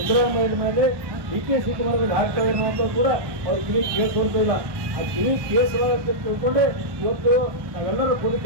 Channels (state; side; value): late; left; 1.2 ms